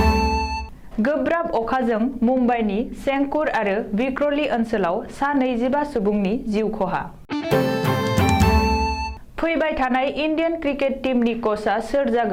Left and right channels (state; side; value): identical; both; correlation 1.00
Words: गोब्राब अखाजों मुम्बाइनि सेंकुर आरो विक्रली ओनसोलाव सा 25 सुबुंनि जिउ खहा। फैबाय थानाय इन्डियान क्रिकेट टीमनि कचआ सोर